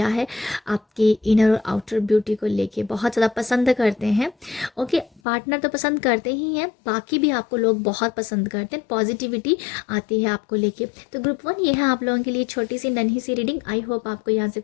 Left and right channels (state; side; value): drops out; right; at 5.2 s